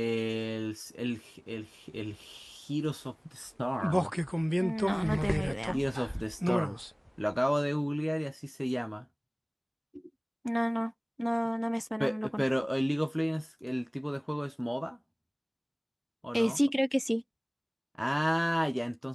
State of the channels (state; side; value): identical; both; correlation 1.00